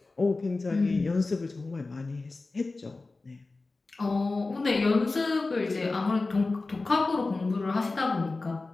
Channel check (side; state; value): right; quieter; 3.5 dB